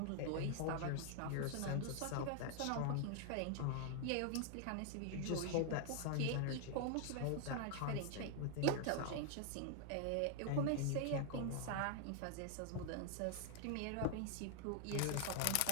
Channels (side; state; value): both; different; correlation 0.00